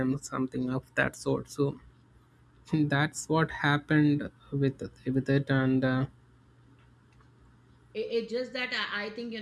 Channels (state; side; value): identical; both; correlation 1.00